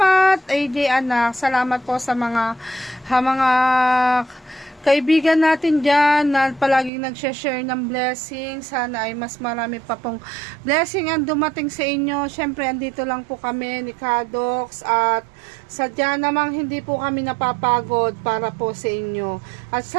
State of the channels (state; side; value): drops out; left; at 6.9 s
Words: AJ anak. Salamat po sa mga kaibigan natin dyan na palaging nag-share ng blessing. Sana ay mas marami pa pong blessing ang dumating sa inyo. Siyempre, andito lang po kami ni Kadox at sadya namang hindi po kami napapagod para po sa inyo. At